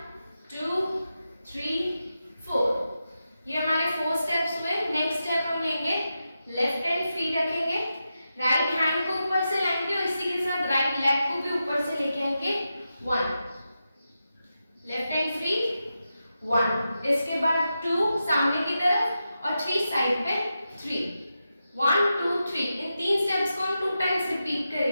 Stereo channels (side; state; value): both; inverted; correlation -0.89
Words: 2 3 4। ये हमारे 4 स्टेप्स हुए। नेक्स्ट स्टेप हम लेंगे, लेफ्ट हैंड फ्री रखेंगे, राइट हैंड को ऊपर से लाएंगे और इसी के साथ राइट लेग को भी ऊपर से लेके आएंगे 1, लेफ्ट हैंड फ्री 1, इसके बाद 2 सामने की तरफ और 3 साइड पे 3, 1 2 3। इन 3 स्टेप्स को हम 2 टाइम्स रिपीट